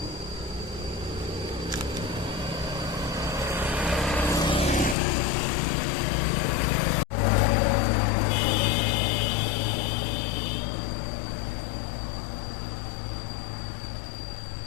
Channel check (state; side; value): drops out; right; at 5.0 s